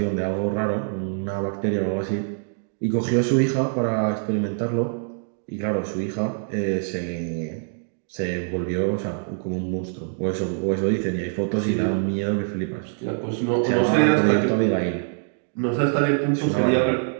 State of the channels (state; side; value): silent; left; digital silence